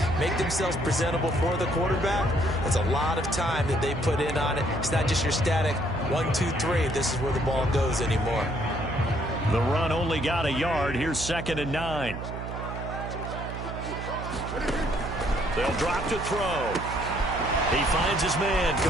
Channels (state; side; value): noise; right; hum, 7 dB below the sound